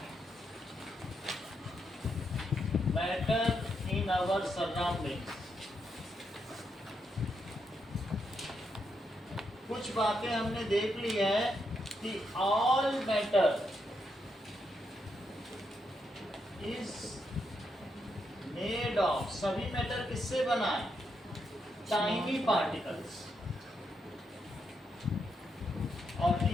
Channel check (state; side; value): normal; both; correlation 0.81